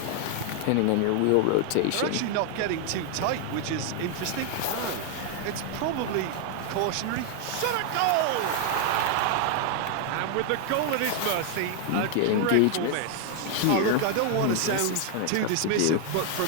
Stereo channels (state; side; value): different; both; correlation 0.00